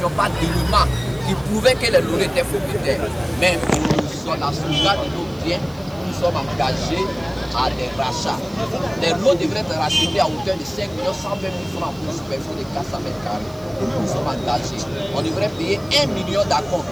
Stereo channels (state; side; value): noise; right; hiss, 25 dB below the sound